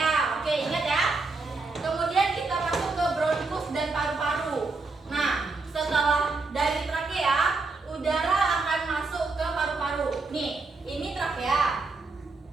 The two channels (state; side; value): quieter; left; 3.8 dB